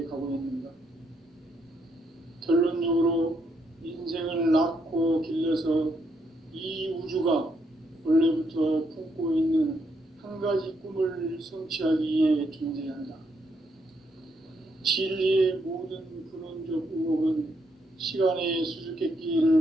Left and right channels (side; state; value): both; normal; correlation 0.76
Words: 가고 있는가? 결론적으로 인생을 낳고 길러서 이 우주가 원래부터 품고 있는 한 가지 꿈을 성취하기 위해 존재한다. 진리의 모든 근원적 의혹은 시간의